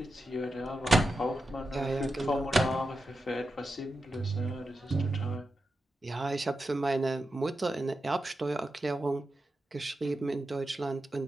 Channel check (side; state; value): both; normal; correlation 0.89